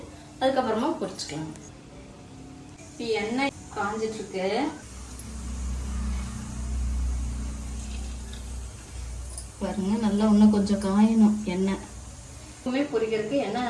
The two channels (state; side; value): identical; both; correlation 1.00